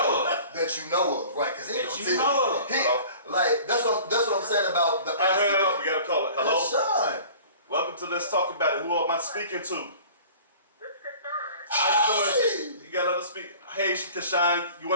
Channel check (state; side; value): inverted; both; correlation -0.45